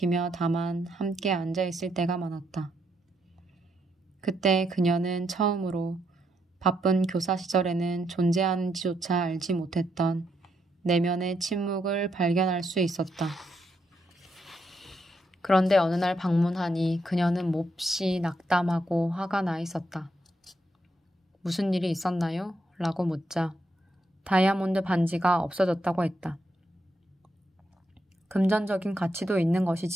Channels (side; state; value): both; normal; correlation 0.78